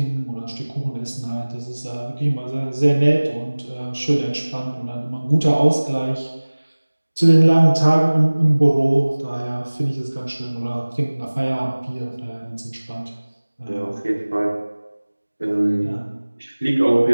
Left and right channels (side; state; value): both; inverted; correlation -1.00